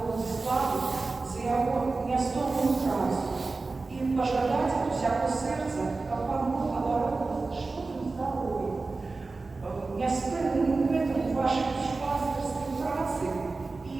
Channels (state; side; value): quieter; left; 3.7 dB